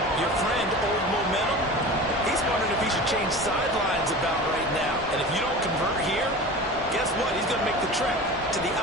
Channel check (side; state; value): both; normal; correlation 0.34